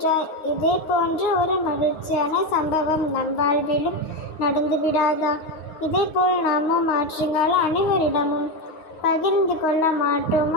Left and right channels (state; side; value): late; right; 9.5 ms